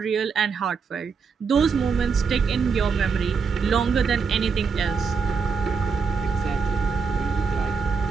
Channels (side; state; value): left; quieter; 5.5 dB